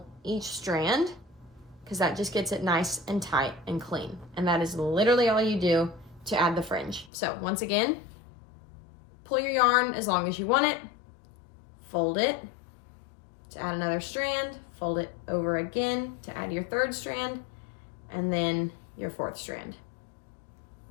each strand, because that just gets it nice and tight and clean. And that is literally all you do to add the fringe. So once again, pull your yarn as long as you want it, fold it to add another strand, fold it over again to add your 3rd strand, and then your 4th strand.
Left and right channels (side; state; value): right; drops out; at 7.1 s